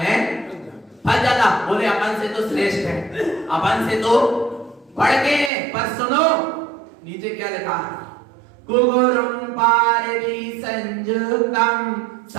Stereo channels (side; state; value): left; drops out; at 5.5 s